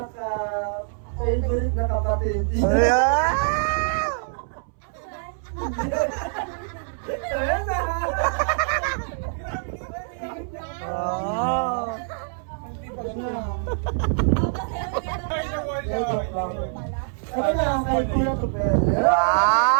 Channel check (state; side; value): silent; left; 62 dB below the other